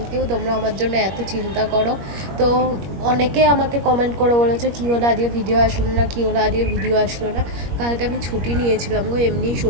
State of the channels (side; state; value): left; late; 21 ms